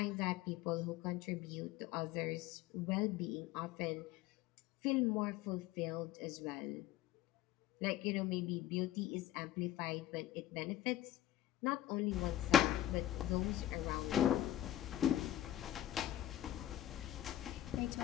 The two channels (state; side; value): quieter; right; 13.0 dB